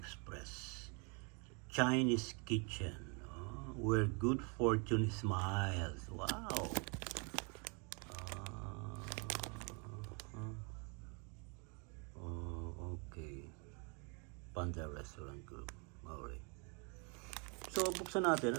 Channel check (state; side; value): quieter; left; 34.6 dB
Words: Chinese kitchen. Where good fortune smiles. Wow! Okay. Panda Restaurant Group. Alright. So, buksan natin.